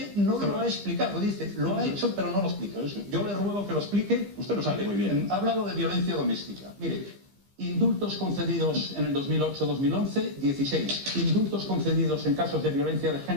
no lo ha explicado, dice, lo ha hecho pero no lo explica. Yo le ruego que lo explique. Usted lo sabe muy bien. Ha hablado de violencia doméstica. Mire, indultos concedidos en el 2008-2011, 16. Indultos concedidos en casos de violencia de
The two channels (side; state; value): left; late; 15 ms